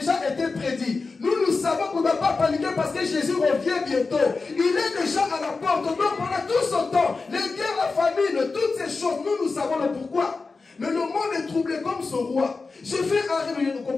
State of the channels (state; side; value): quieter; right; 4.1 dB